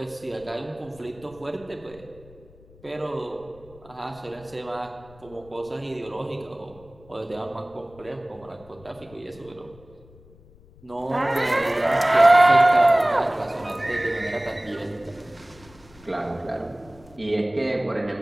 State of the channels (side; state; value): left; noise; rumble, 24 dB below the sound